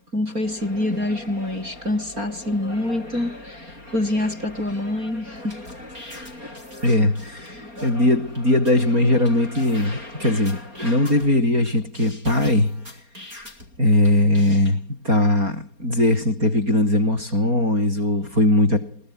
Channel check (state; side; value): late; left; 4.3 ms